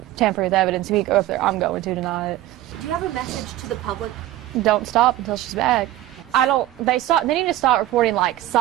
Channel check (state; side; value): quieter; left; 14.5 dB